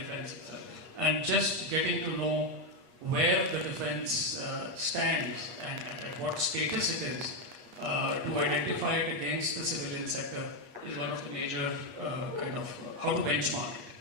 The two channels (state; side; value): late; left; 8.4 ms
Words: itself. And just getting to know where the defense stands and at what status it is to identify it against the civilian sector is one of the major kind of how to benchmark it.